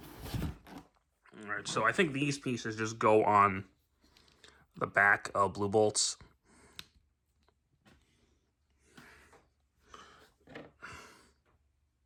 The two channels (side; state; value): both; identical; correlation 1.00